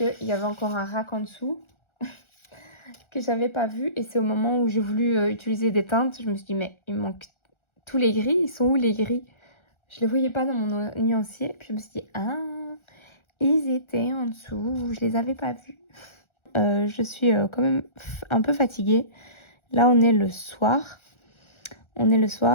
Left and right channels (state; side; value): late; right; 1.4 ms